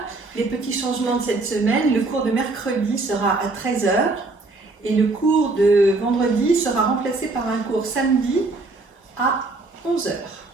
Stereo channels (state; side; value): quieter; left; 3.3 dB